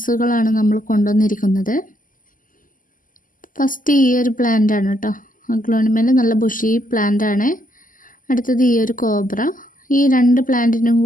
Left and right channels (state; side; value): late; right; 0.39 ms